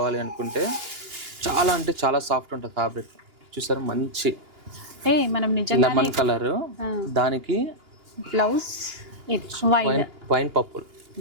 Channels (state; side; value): late; left; 2.8 ms